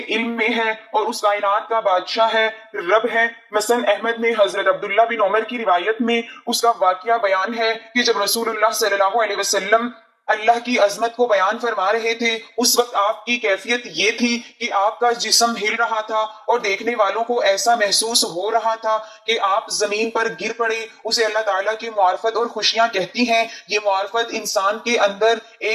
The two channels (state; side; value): identical; both; correlation 1.00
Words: علم میں ہے اور اس کائنات کا بادشاہ ہے، رب ہے۔ مثلا احمد میں حضرت عبداللہ بن عمر کی روایت میں اس کا واقعہ بیان ہے کہ جب رسول اللہ صلی اللہ علیہ وسلم اللہ کی عظمت کو بیان فرما رہے تھے، اس وقت آپ کی کیفیت یہ تھی کہ آپ کا جسم ہل رہا تھا اور دیکھنے والوں کو ایسا محسوس ہو رہا تھا کہ آپ زمین پر گر پڑے۔ اسے اللہ تعالیٰ کی معرفت اور خوشیاں کہتی ہیں۔ یہ معرفت انسان کے اندر